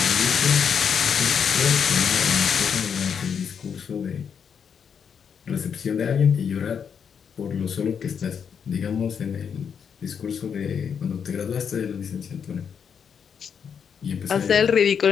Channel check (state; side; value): quieter; right; 7.1 dB